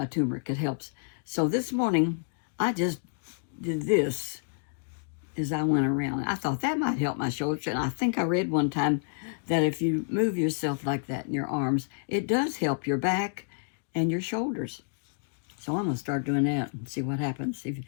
turmeric. It helps. So this morning, I just did this as I went around. I thought that might help my shoulders. And I think I read one time that if you move yourself like that in your arms, it does help your back and your shoulders. So I'm going to start doing that and see what happens.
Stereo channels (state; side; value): silent; right; digital silence